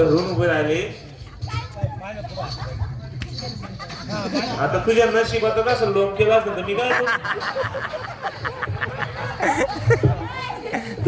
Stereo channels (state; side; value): identical; both; correlation 1.00